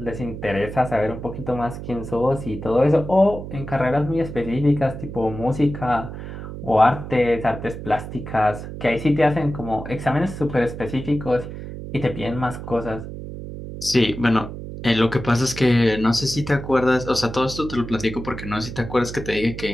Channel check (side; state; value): right; noise; hum, 9 dB below the sound